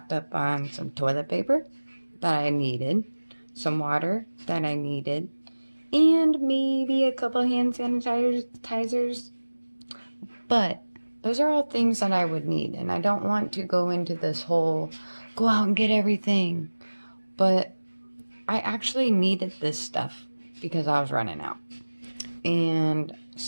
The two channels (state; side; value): inverted; both; correlation -1.00